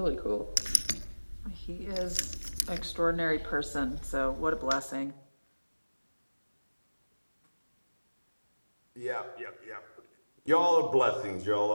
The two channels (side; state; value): both; inverted; correlation -1.00